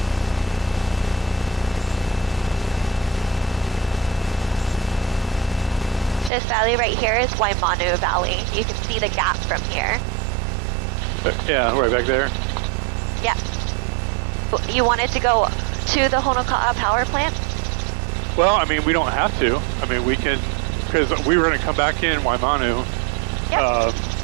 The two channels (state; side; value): drops out; left; at 6.3 s